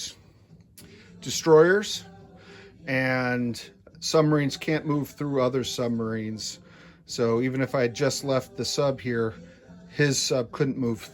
destroyers, and submarines can't move through other submarines. So even if I had just left the sub here, his sub couldn't move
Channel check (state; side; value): identical; both; correlation 1.00